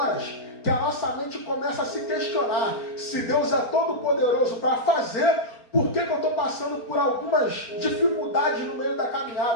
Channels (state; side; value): late; right; 4.4 ms